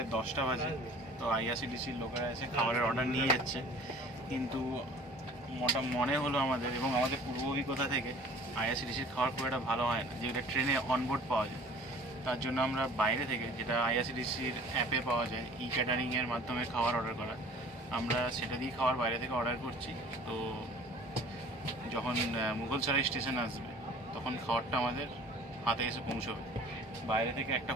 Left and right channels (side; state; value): both; normal; correlation 0.49